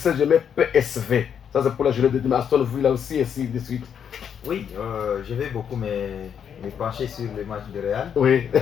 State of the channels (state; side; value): quieter; right; 8.0 dB